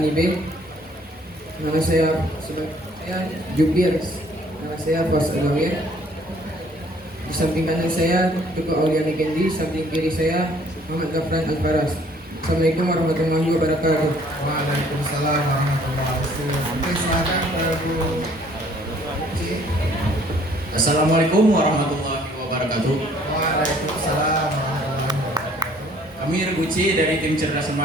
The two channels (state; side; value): normal; both; correlation 0.59